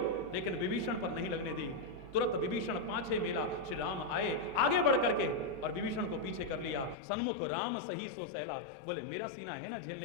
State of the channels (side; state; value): right; drops out; at 7.0 s